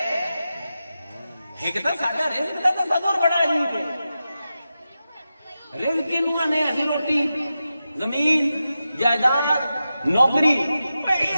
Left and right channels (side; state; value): both; inverted; correlation -0.91